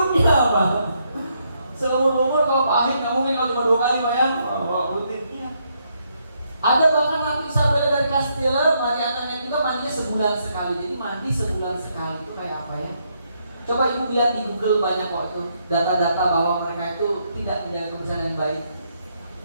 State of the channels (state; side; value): inverted; both; correlation -0.76